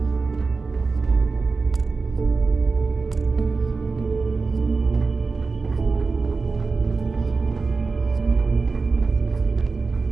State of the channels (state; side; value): quieter; left; 4.2 dB